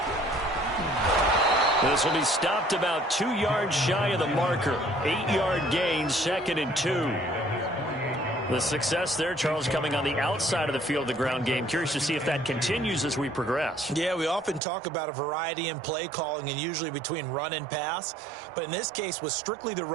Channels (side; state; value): left; drops out; at 14.6 s